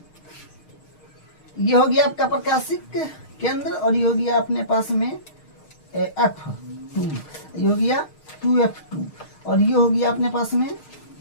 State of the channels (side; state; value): right; late; 6.5 ms